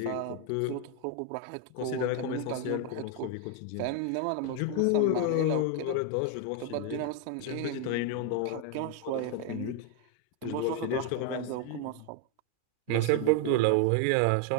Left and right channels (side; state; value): both; different; correlation 0.01